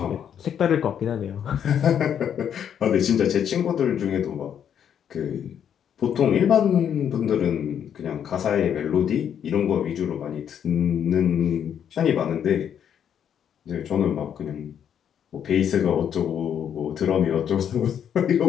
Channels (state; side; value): quieter; right; 8.8 dB